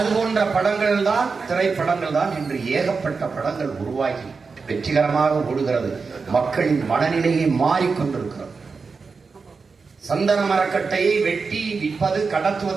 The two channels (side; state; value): left; quieter; 4.8 dB